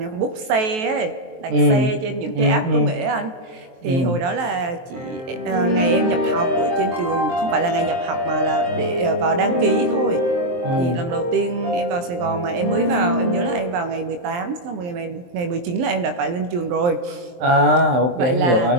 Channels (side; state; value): left; late; 23 ms